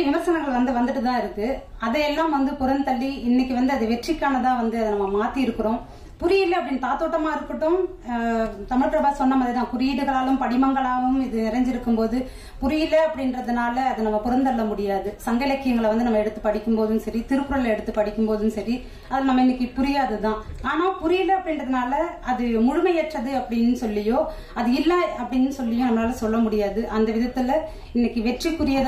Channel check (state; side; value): identical; both; correlation 1.00